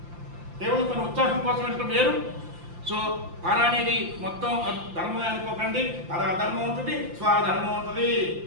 కేవలం తన ఉత్సాహం కోసం వెళ్ళడం వేరు. సో పర అనేది మొత్తం ధర్మమే అనుకోకండి. పర ధర్మం ఉంటుంది, స్వధర్మం ఉంటుంది.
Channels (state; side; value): late; left; 5.8 ms